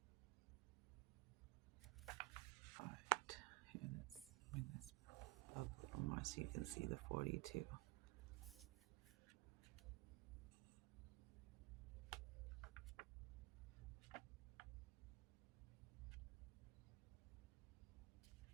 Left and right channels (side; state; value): left; quieter; 22.5 dB